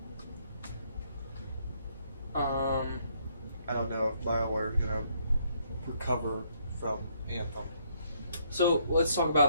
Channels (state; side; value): inverted; both; correlation -0.70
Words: I don't know if BioWare is going to recover from Anthem. So let's talk